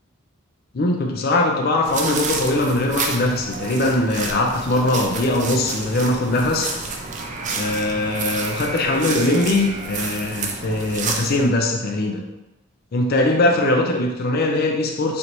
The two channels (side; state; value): both; normal; correlation 0.27